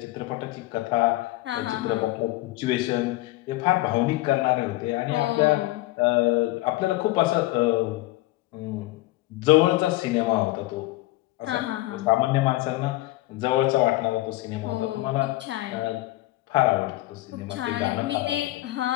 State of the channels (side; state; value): right; quieter; 18.3 dB